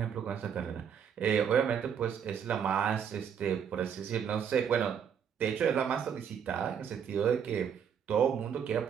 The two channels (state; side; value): quieter; left; 7.9 dB